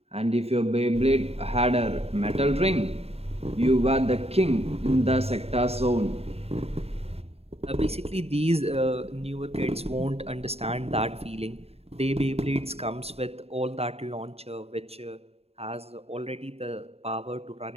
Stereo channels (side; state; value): left; late; 0.29 ms